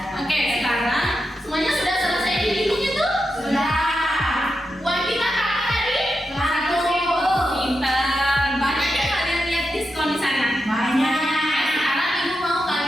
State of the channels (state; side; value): normal; both; correlation 0.88